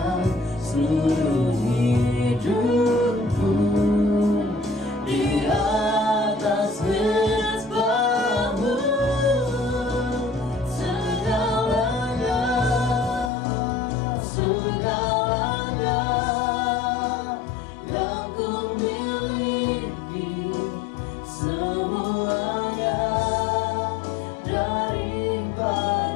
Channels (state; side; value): drops out; right; at 13.3 s